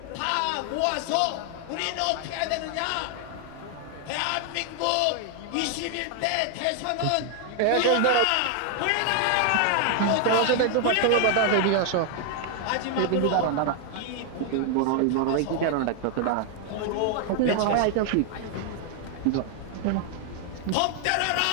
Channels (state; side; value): different; both; correlation 0.00